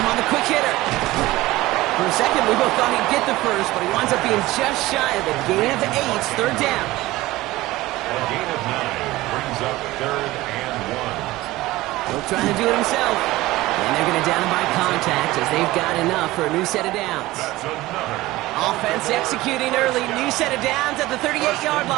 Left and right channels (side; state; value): left; quieter; 18.2 dB